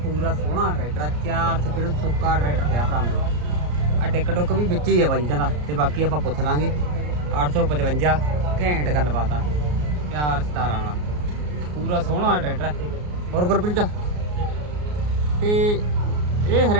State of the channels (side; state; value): left; late; 34 ms